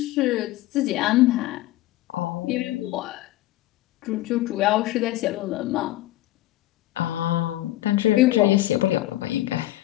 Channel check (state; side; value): quieter; right; 15.9 dB